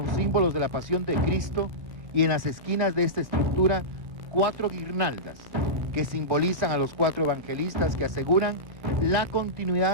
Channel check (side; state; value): left; late; 1.4 ms